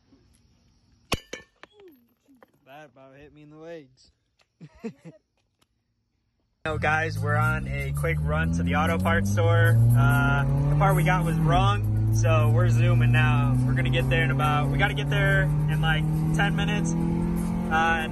That about hit me in the legs. So guys, we're on a quick run to the auto parts store. The part we got was wrong, so we're zooming now. We're gonna get there in about, we gotta get there in like 10 minutes at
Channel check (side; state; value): both; identical; correlation 1.00